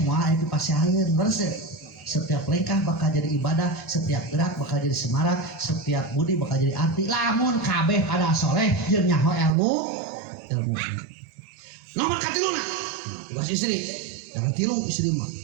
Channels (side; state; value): left; drops out; at 9.6 s